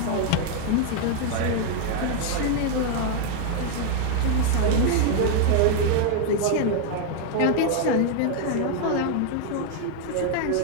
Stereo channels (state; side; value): different; both; correlation 0.00